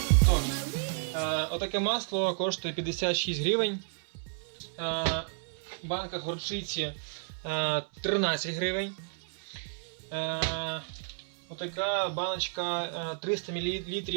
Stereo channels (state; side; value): silent; left; 57 dB below the other